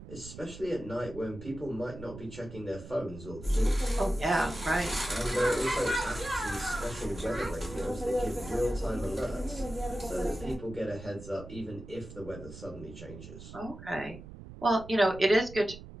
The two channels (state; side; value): noise; right; rumble, 14 dB below the sound